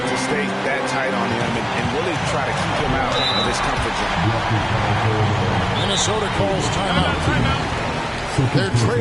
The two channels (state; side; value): identical; both; correlation 1.00